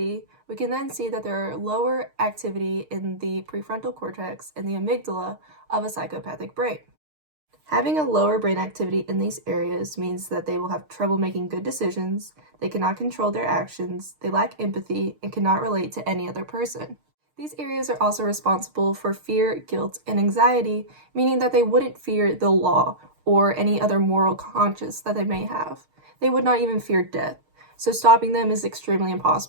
we can then see that there are lower activity in the prefrontal cortex and the amygdala of a psychopathic brain. Having a lower brain activity in these areas means that they will have trouble making good decisions, they cannot control their actions, they lack empathy, and cannot relate to any other person. These areas are also responsible for fear, guilt, and anxiety, meaning that they wouldn't fear the law or any other moral conscience that they may have. They would not even fear death, so stopping them is extremely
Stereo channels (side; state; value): left; late; 6.5 ms